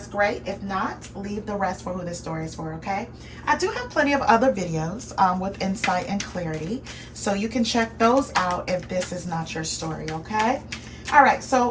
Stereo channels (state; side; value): identical; both; correlation 1.00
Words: great. If not, leave the rest for who this story is for, okay? I do have plenty of other videos with insight and clarity, so you can check those out if this is not your story, okay? All right,